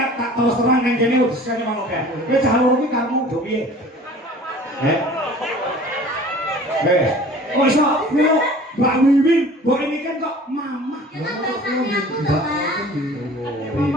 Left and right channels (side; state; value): both; normal; correlation 0.46